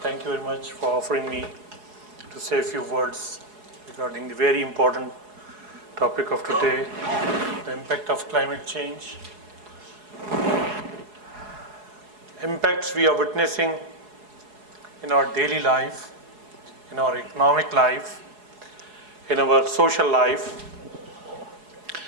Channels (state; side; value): late; left; 4.8 ms